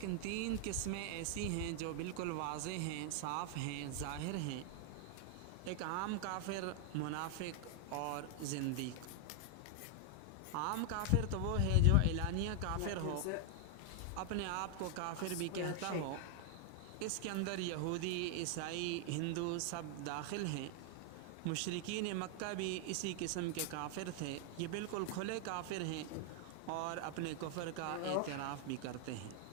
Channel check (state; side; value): different; both; correlation 0.00